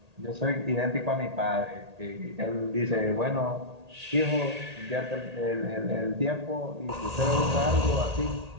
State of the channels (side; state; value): left; late; 1.8 ms